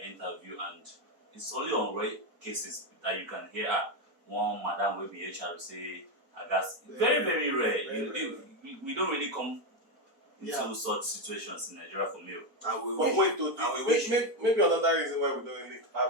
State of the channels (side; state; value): left; late; 4.3 ms